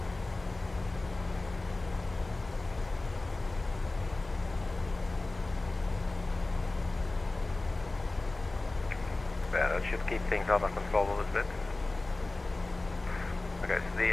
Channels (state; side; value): quieter; right; 3.1 dB